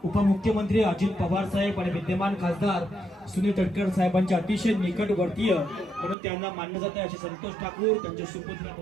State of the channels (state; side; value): drops out; left; at 6.2 s